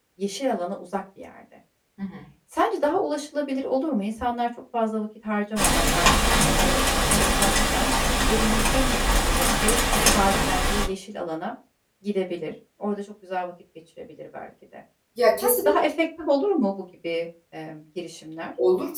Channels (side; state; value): both; identical; correlation 1.00